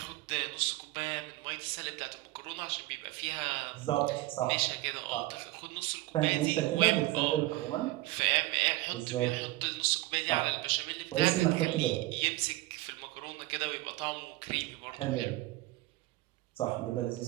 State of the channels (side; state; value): left; quieter; 18.4 dB